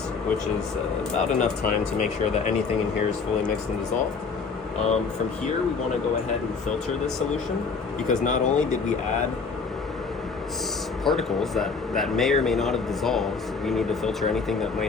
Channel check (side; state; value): right; quieter; 4.9 dB